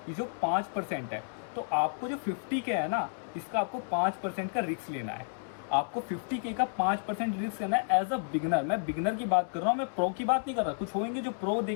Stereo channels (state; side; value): silent; right; digital silence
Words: ये जो 5% है, तो आपको जो 50K है ना, इसका आपको 5% का रिस्क लेना है। आपको 50K का 5% रिस्क करना है एज अ बिगनर। मैं बिगनर की बात कर रहा हूँ, मैं प्रो की बात नहीं कर रहा। कुछ होंगे जो प्रो